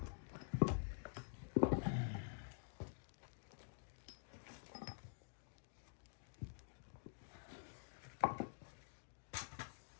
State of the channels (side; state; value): right; silent; digital silence